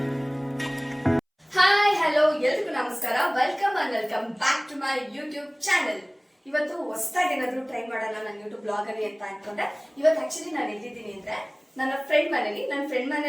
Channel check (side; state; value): both; identical; correlation 1.00